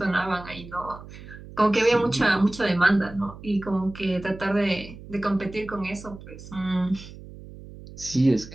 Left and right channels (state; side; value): noise; right; hum, 16 dB below the sound